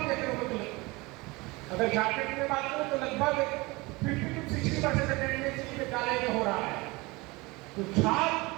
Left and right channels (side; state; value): left; quieter; 23.7 dB